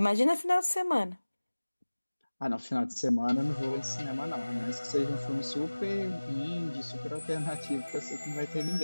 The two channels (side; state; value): both; inverted; correlation -1.00